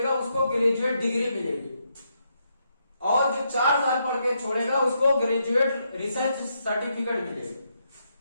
उसको ग्रेजुएट डिग्री मिलेगी, और जो 4 साल पढ़ के छोड़ेगा उसको ग्रेजुएट रिसर्च सर्टिफिकेट मिलेगा।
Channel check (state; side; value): inverted; both; correlation -0.79